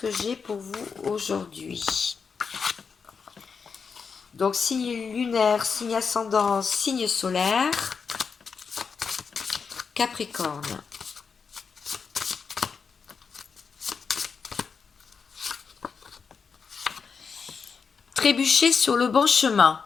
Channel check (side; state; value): right; quieter; 5.7 dB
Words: j'ai pour vous aujourd'hui? Donc, signe lunaire, signe ascendant, signe solaire. Capricorne. Trébucher sur le bon chemin